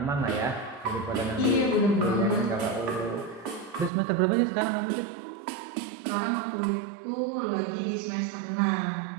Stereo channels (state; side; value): drops out; left; at 3.9 s